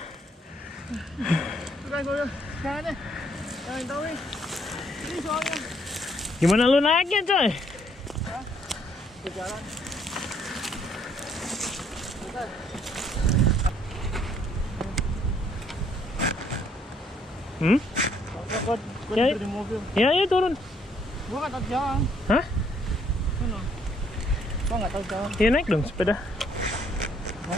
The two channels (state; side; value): normal; both; correlation 0.67